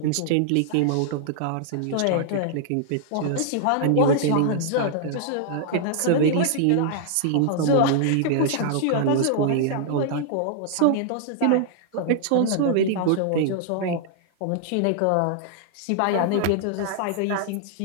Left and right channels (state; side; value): different; both; correlation -0.01